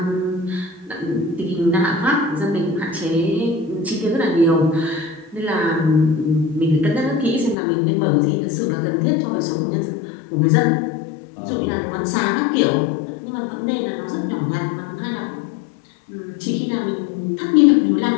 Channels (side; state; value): right; drops out; at 7.6 s